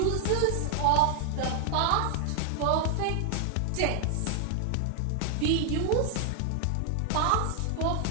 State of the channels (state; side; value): different; both; correlation 0.00